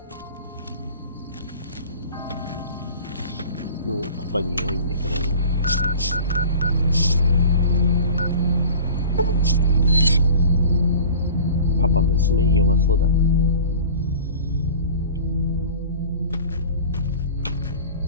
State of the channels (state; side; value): inverted; both; correlation -0.40